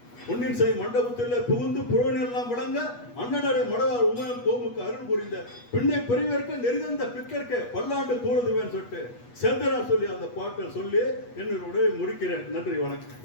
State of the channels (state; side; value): late; right; 8.3 ms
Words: பொன்னின் செய் மண்டபத்தில் புகுந்து புறவனெல்லாம் விளங்க அண்ணனடை மடவார் உமையன் கோமுக்கு அருள் புரிந்த பின்னை பெரியவர்க்கு நெறிந்த பிற்கற்க பல்லாண்டு கூடுதுவேன்னு சொல்லிட்டு செந்தனா சொல்லி அந்த பாட்டை சொல்லி என்னுடைய முடிக்கிறேன். நன்றி,